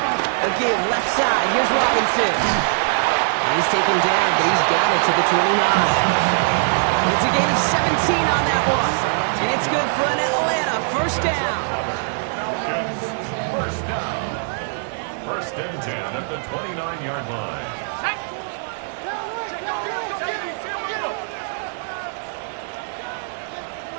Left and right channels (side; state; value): left; silent; digital silence